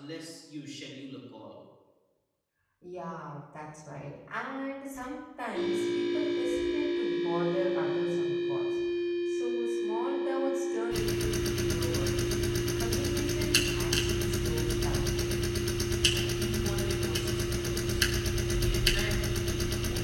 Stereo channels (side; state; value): both; identical; correlation 1.00